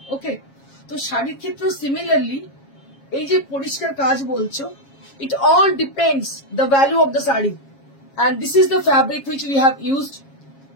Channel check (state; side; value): late; right; 7.3 ms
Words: Okay, তো শাড়ির ক্ষেত্রেও similarly এই যে পরিষ্কার কাজ বলছো, it all depends the value of the sari, and this is the fabric which we have used